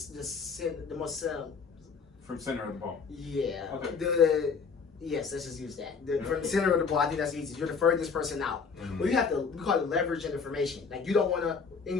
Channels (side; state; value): right; quieter; 5.4 dB